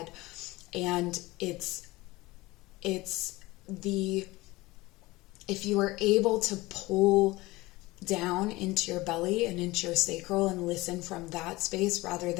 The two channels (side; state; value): right; quieter; 20.4 dB